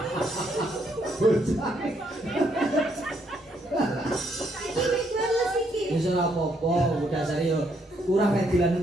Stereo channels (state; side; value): normal; both; correlation 0.73